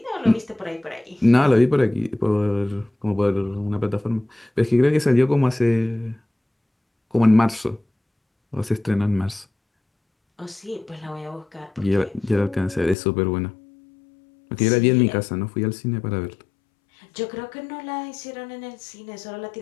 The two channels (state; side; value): drops out; right; at 13.0 s